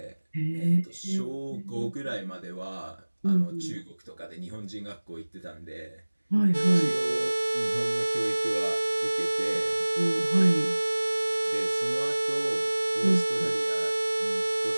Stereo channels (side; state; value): both; inverted; correlation -1.00